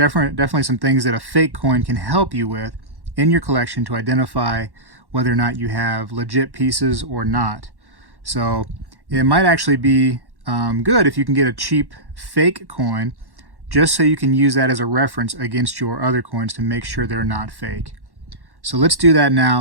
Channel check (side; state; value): left; late; 1.1 ms